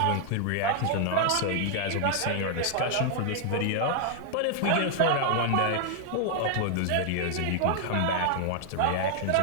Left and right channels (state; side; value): different; both; correlation 0.00